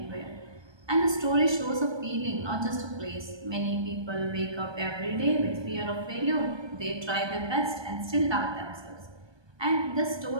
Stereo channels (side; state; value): left; late; 1.2 ms